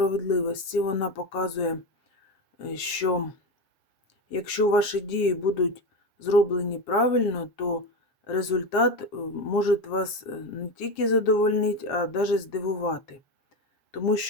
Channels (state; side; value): late; right; 7.5 ms